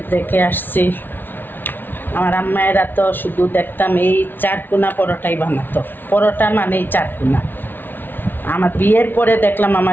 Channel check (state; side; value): late; right; 0.095 ms